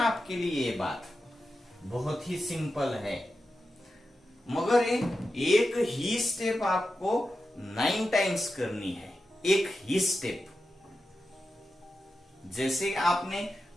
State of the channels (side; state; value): both; normal; correlation 0.90